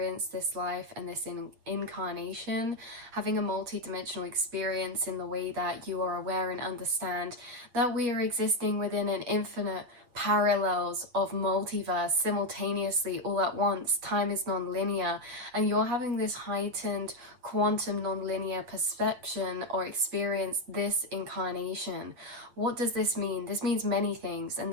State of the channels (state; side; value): late; left; 8.0 ms